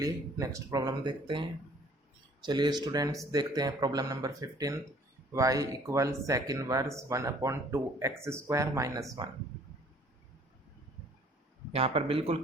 नेक्स्ट प्रॉब्लम देखते हैं। चलिए स्टूडेंट्स देखते हैं problem number 15, y equal sec inverse 1 upon 2 X square minus 1। यहाँ पर बिल्कुल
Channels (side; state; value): both; normal; correlation 0.56